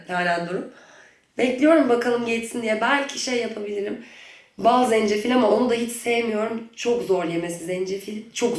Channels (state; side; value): identical; both; correlation 1.00